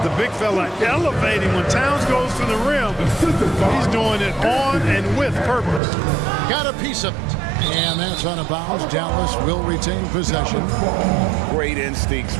the big fella elevating when Towns goes to the rim. He's doing it on and with purpose. Got a piece of it. And that's out of bounds. Dallas will retain possession. Great instincts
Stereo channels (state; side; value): drops out; left; at 5.8 s